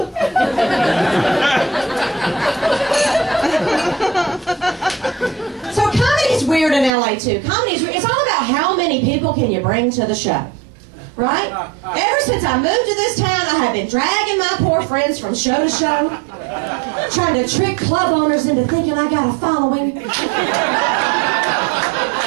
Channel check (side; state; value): left; drops out; at 6.9 s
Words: So comedy's weird in LA too. Comedy's weird. It's all about how many people can you bring to the show. Right? Ever since I moved to this town, I have been dragging my poor friends from show to show, trying to trick club owners into thinking I got a following.